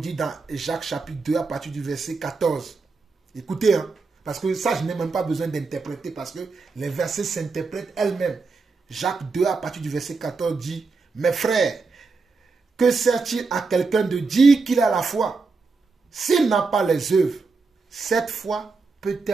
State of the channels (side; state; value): left; quieter; 4.3 dB